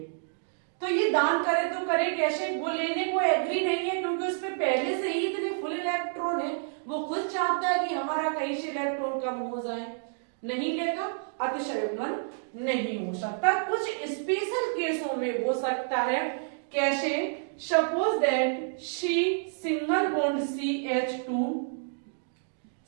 तो ये दान करे तो करे कैसे? वो लेने को एग्री नहीं है, क्योंकि उस पे पहले से ही इतने फुल इलेक्ट्रॉन है, वो खुद चाहता है कि हमारा कहीं से इलेक्ट्रॉन कम हो जाए। नहीं लेगा, अतिशयुग्मन नहीं हो सकता। कुछ स्पेशल केसों में हो सकता है। कैसे? Suppose that C single bond CH2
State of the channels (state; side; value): silent; left; digital silence